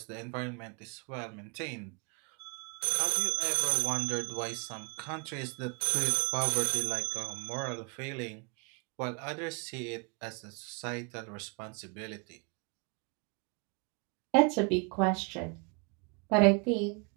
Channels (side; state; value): left; quieter; 34.4 dB